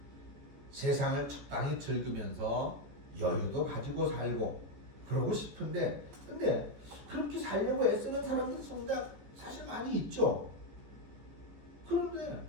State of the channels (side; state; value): left; late; 14 ms